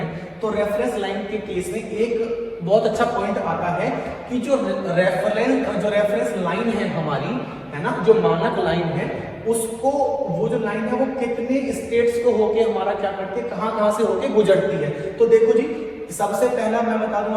तो रेफरेंस लाइन के केस में एक बहुत अच्छा पॉइंट आता है कि जो रेफरेंस लाइन है हमारी, है ना, जो मानक लाइन है, उसको वो जो लाइन है वो कितने स्टेट्स को होके हमारा क्या करती है, कहां से होके गुजरती है। तो देखो जी, सबसे पहला मैं बता दूं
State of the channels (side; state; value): both; identical; correlation 1.00